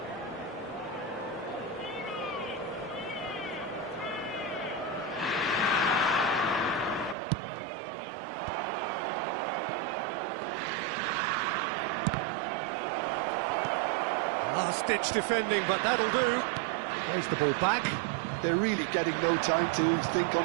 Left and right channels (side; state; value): left; drops out; at 7.2 s